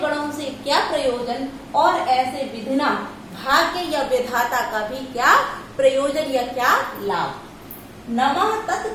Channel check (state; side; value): identical; both; correlation 1.00